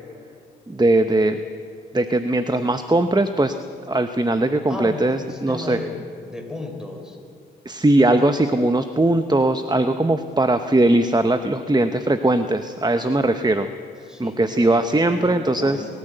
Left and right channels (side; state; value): both; normal; correlation 0.77